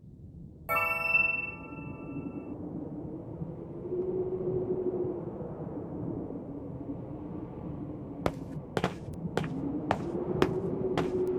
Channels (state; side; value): identical; both; correlation 1.00